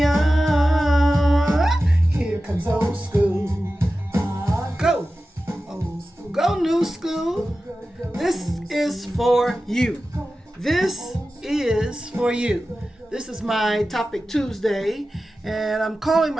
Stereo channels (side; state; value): both; normal; correlation 0.94